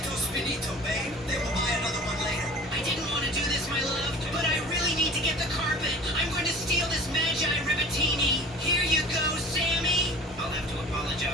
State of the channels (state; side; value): normal; both; correlation 0.42